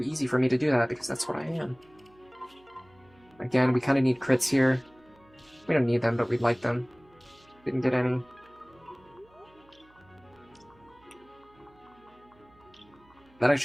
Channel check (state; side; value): noise; right; hum, 30 dB below the sound